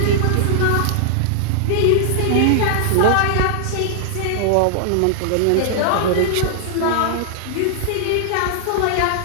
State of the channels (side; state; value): both; different; correlation -0.01